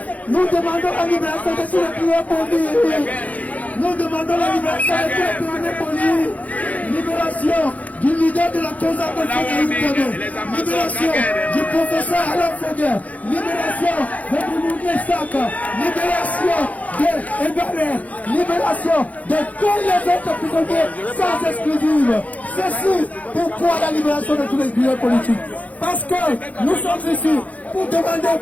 Nous demandons la libération de tous les prisonniers politiques. Nous demandons la libération de tous les prisonniers politiques. Libération du leader de la cause de libération du professeur Alain Foguet, libération de Moumouni Sak, libération de Ebaré, libération de tous les autres prisonniers sans exclusive. Ceci, pourquoi la libération de tous les prisonniers politiques? Parce que nous sommes ici pour demander au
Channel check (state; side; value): late; right; 0.072 ms